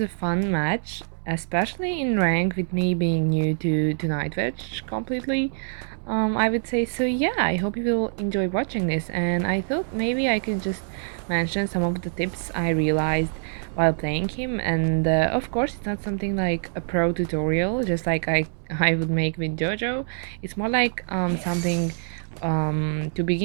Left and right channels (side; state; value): left; silent; digital silence